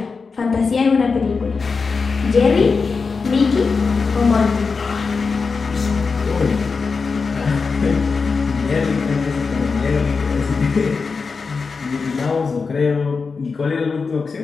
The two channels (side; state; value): right; quieter; 4.8 dB